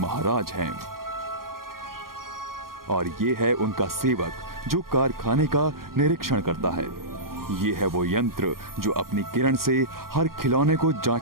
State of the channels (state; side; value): late; left; 0.92 ms